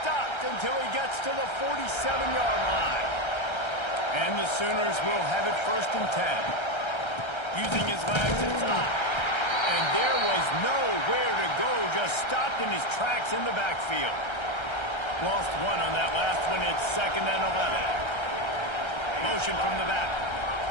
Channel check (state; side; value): late; right; 1.3 ms